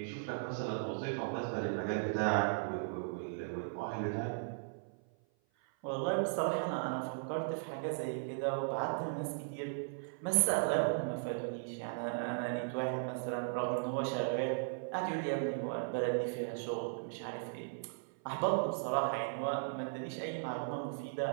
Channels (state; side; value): silent; left; 53 dB below the other